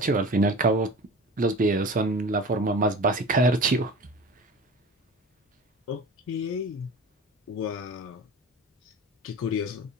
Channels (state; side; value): normal; both; correlation 0.37